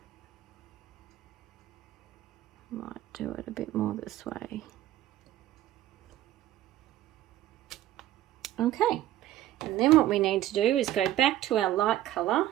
might do it a bit more this way. Okay, and then what we need to do is go back to our light colour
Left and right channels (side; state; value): left; quieter; 13.7 dB